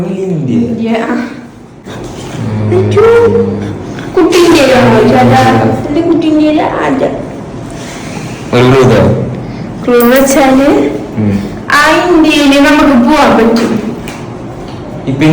കുട്ടി ഇന്ത്യയിലാണോ ചേട്ടാ? എന്റെ കുട്ടി ഇന്ത്യയില ആദ്യം ക്ലൂ വെച്ചാല് ആ ഇന്ത്യയില് നമുക്ക് പോവാൻ പറ്റും. ഇപ്പൊ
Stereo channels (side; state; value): both; identical; correlation 1.00